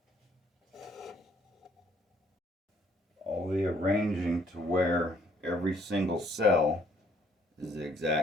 to where every single cell is the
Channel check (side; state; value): both; normal; correlation 0.64